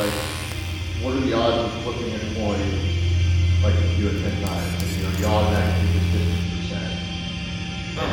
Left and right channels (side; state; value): both; identical; correlation 1.00